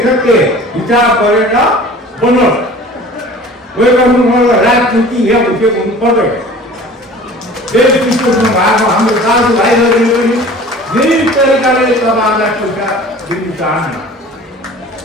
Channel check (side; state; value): both; normal; correlation 0.44